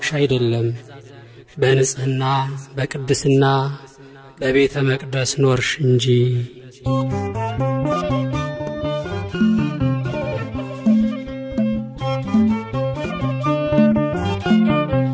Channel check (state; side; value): identical; both; correlation 1.00